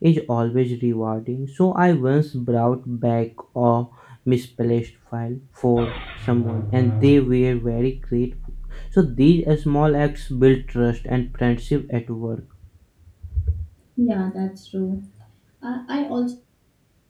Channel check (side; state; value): both; identical; correlation 1.00